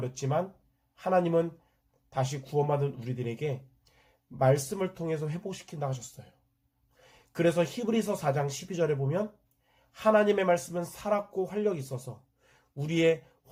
하나님은 다시 구원받은 우리들에게 말씀을 통해서 회복시킨다 하셨어요. 그래서 히브리서 4장 12절에 보면 하나님의 말씀은 살았고 활력이 있어서 우리의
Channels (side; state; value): both; identical; correlation 1.00